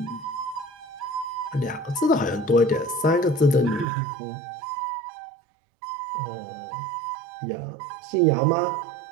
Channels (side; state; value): left; drops out; at 3.9 s